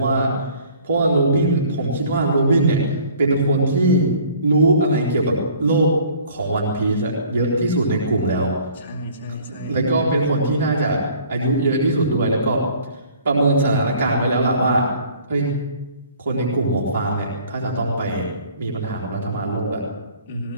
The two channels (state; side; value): inverted; both; correlation -0.53